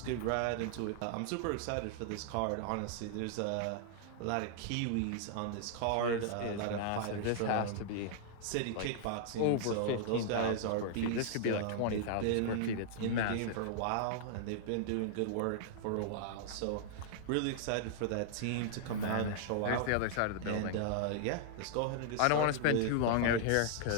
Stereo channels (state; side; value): different; both; correlation -0.01